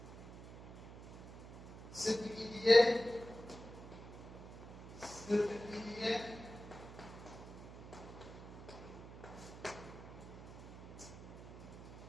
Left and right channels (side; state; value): right; noise; hum, 13 dB below the sound